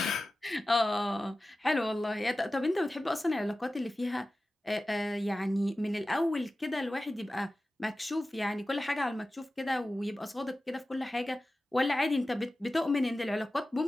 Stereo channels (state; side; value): normal; both; correlation 0.95